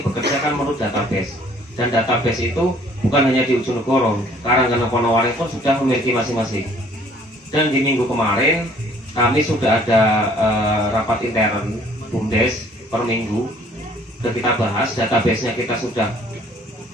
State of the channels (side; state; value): both; normal; correlation 0.58